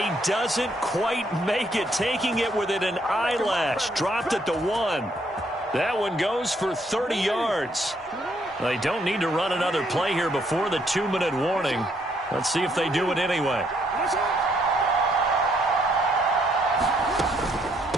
doesn't quite make it, taking it within an eyelash. Dropped it to 1. That one goes for 30 yards. They don't need to run another play here before the 2-minute warning. Let's see if they do it anyway.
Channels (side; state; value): both; normal; correlation 0.70